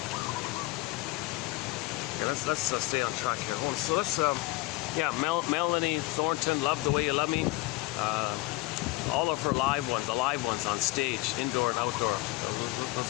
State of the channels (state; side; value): quieter; right; 20.3 dB